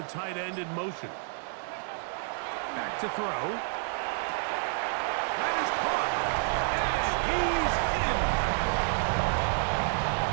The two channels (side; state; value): left; silent; 58 dB below the other